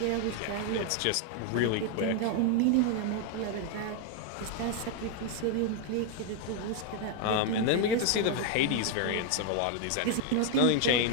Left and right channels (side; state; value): both; different; correlation 0.00